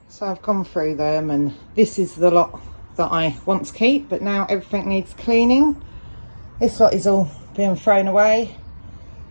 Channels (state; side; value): inverted; both; correlation -1.00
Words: So I've gone through them, and this is the lot that I want to keep, but now everything needs cleaning. This lot is all being thrown away.